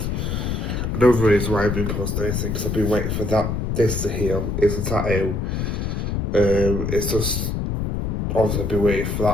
another reason why I've been posting anything because I've been waiting for this to heal. It's a tattoo. It's just obviously I've been waiting for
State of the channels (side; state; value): left; noise; rumble, 1 dB below the sound